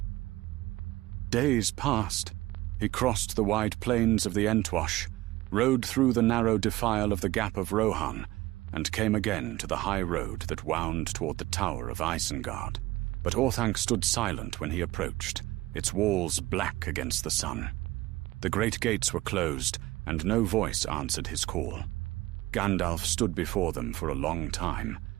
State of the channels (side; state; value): left; quieter; 18.1 dB